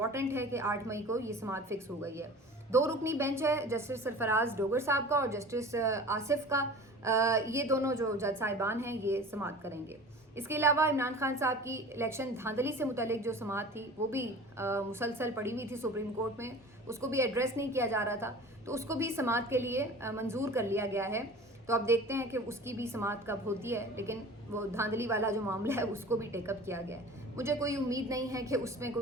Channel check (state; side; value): normal; both; correlation 0.40